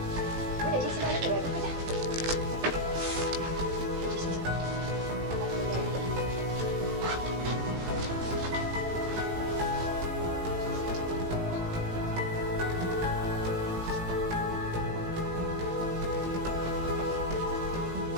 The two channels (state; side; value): late; left; 18 ms